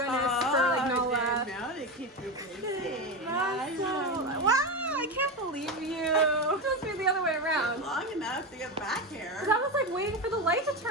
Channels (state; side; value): normal; both; correlation 0.17